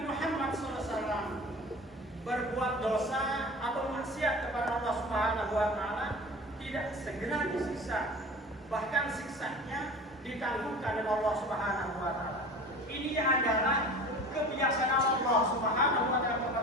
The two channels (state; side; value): normal; both; correlation 0.38